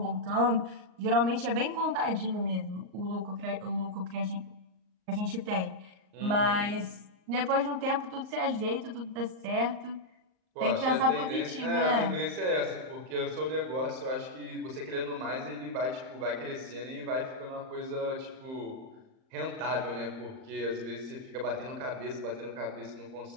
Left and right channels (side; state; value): left; late; 38 ms